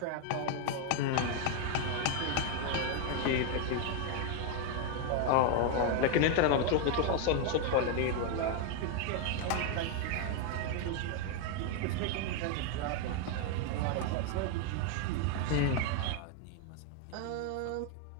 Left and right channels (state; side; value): different; both; correlation 0.01